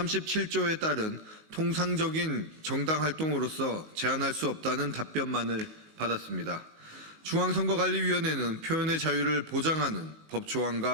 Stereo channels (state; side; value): late; left; 18 ms